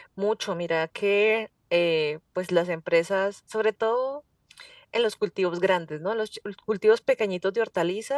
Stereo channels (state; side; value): identical; both; correlation 1.00